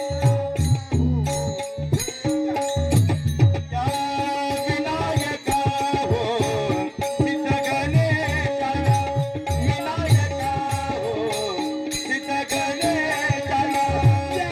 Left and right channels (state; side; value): identical; both; correlation 1.00